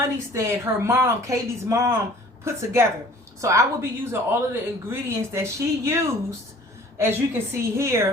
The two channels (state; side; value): normal; both; correlation 0.50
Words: her mom, Kaylee's mom, put together. So I will be using all of the ingredients that she used. As you can see